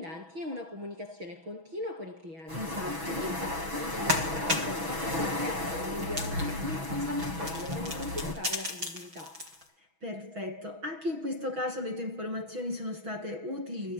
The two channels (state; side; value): late; left; 6.2 ms